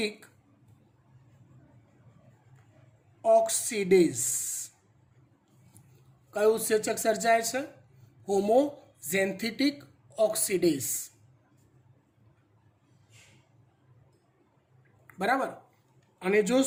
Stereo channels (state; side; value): identical; both; correlation 1.00